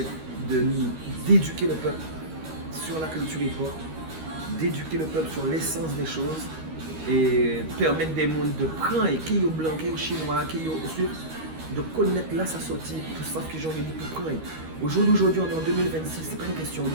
d'éduquer le peuple sur la culture hip-hop, d'éduquer le peuple sur l'essence des choses et permettre des mondes de prendre et qui est blanc, qui est chinois, qui est de connaître là sa sortie, tout ça que j'ai envie de pour prendre. Aujourd'hui, on est en 2026, c'est pas une question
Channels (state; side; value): late; left; 13 ms